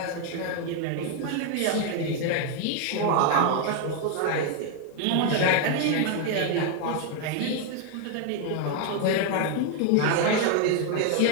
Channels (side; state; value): both; different; correlation 0.01